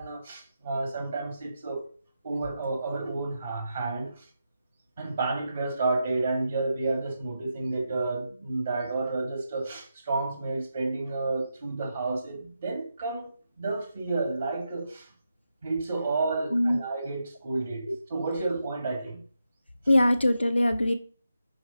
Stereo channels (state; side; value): inverted; both; correlation -0.86